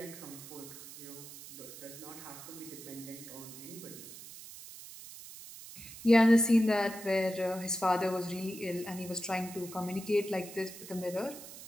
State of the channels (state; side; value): noise; right; hiss, 14 dB below the sound